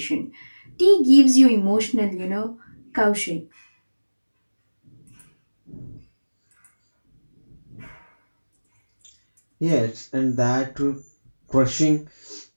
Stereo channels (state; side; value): inverted; both; correlation -1.00